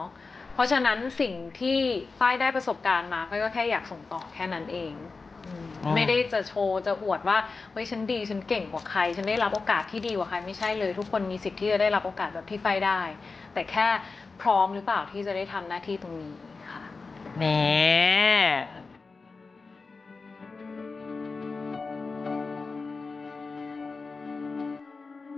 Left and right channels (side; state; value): right; quieter; 4.2 dB